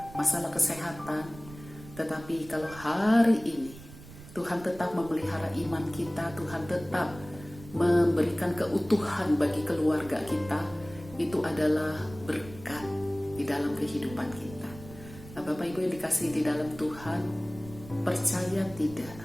masalah kesehatan. Tetapi kalau hari ini Tuhan tetap memelihara iman kita, Tuhan tetap memberikan keutuhan bagi keluarga kita, itu adalah berkat di dalam kehidupan kita. Nah, Bapak Ibu yang dikasihi di dalam Tuhan, percaya tidak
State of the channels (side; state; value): right; noise; rumble, 17 dB below the sound